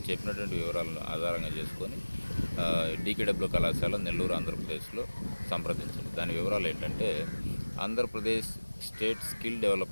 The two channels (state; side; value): inverted; both; correlation -1.00